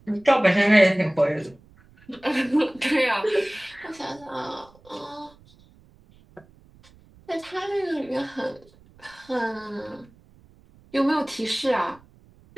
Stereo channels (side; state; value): right; noise; rumble, 27 dB below the sound